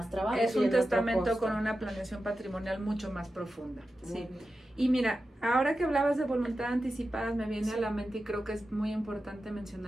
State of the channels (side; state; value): both; normal; correlation 0.92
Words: trabajo. Es un testamento con una planeación patrimonial mucho más profunda. Sí. Y mira, ahora que hablabas de voluntad anticipadas, me viene a la mente, y creo que es muy importante